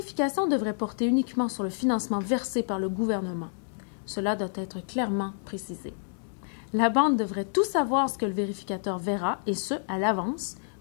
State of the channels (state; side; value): silent; right; digital silence